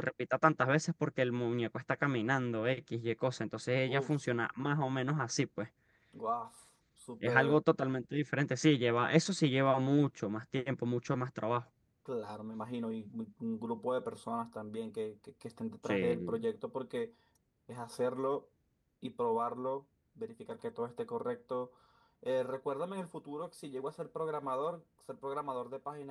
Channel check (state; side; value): identical; both; correlation 1.00